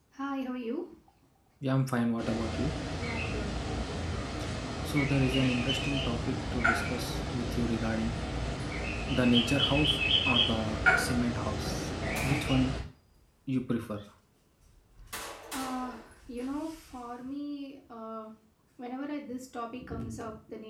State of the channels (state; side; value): identical; both; correlation 1.00